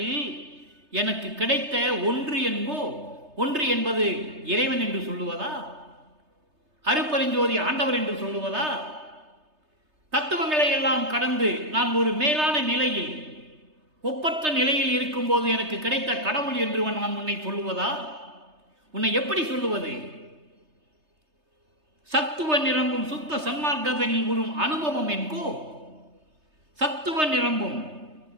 எனக்கு கிடைத்த ஒன்று என்போ, ஒன்று என்பது இறைவன் என்று சொல்லுவதா? அருட்பெருஞ்சோதி ஆண்டவர் என்று சொல்லுவதா? தத்துவங்களை எல்லாம் கடந்து நான் ஒரு மேலான நிலையில், ஒப்பற்ற நிலையில் இருக்கும் போது எனக்கு கிடைத்த கடவுள் என்று நான் உன்னை சொல்லுவதா? உன்னை எப்படி சொல்லுவது? சத்துவ நிரம்பும் சுத்த சன்மார்க்கதனில் ஒரு அனுபவம் என்கோ. சத்துவ நிரம்பும்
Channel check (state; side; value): late; left; 3.3 ms